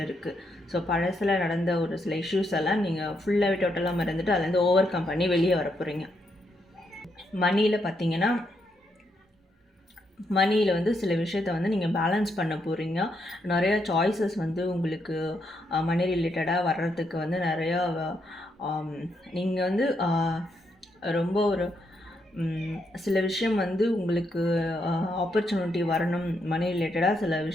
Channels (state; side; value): normal; both; correlation 0.79